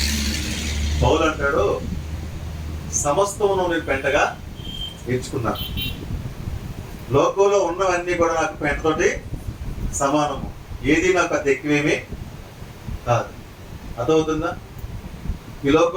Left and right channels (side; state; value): both; identical; correlation 1.00